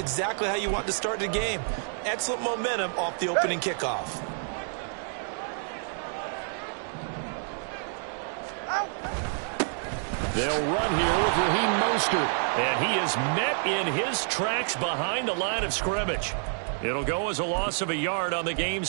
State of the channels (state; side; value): silent; left; 59 dB below the other